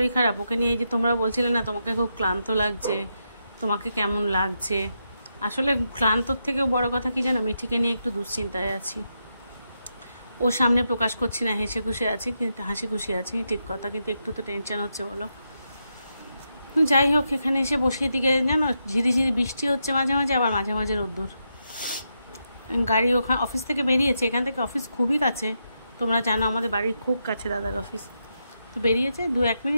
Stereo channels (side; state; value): both; inverted; correlation -0.84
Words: খারাপ, ওকে নিয়ে এই যে তোমরা বলছিলে না তোমাকে খুব ক্লান্ত লাগছে, তোমাকে কেমন লাগছে, আসলে ক্লান্তর থেকেও বড় কথা কি জানো, মিঠিকে নিয়ে একটু দুশ্চিন্তায় আছি। ওর সামনে প্রকাশ করছি না, হাসি খুশি আছি ঠিক কথা, কিন্তু একটু তো টেনশন হচ্ছে বলো। যাই হোক, এখানে এসে বসিয়ে দিকে জানো ঝিরিঝিরি বৃষ্টি হচ্ছে মাঝে মাঝে, আবার মাঝে মাঝে রোদ্দুর। গাড়ি ওখানে অফিস থেকে বেরিয়েছে, এখান থেকে অফিস খুবই কাছে, তোমরা জানো আমাদের বাড়ির খুব কাছে দাদার অফিস। তো বেরিয়েছে, 2-1